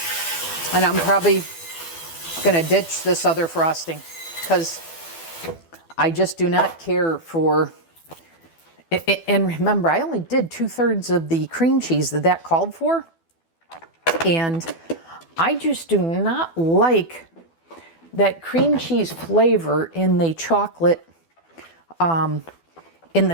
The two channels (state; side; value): late; right; 12 ms